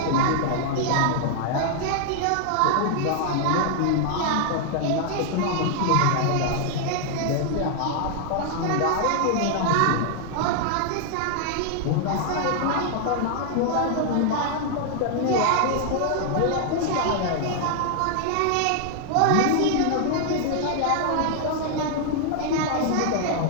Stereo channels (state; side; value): different; both; correlation 0.00